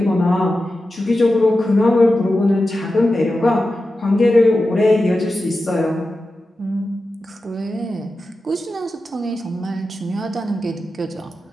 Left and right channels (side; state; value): both; normal; correlation 0.92